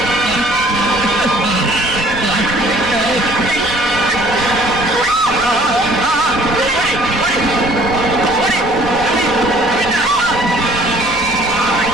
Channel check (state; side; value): noise; left; rumble, 19 dB below the sound